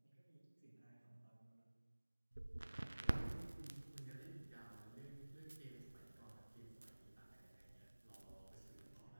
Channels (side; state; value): both; inverted; correlation -1.00